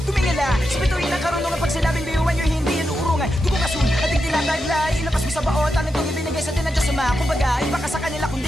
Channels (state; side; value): normal; both; correlation 0.87